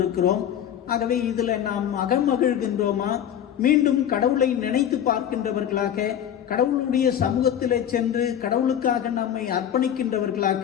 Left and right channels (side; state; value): right; quieter; 9.8 dB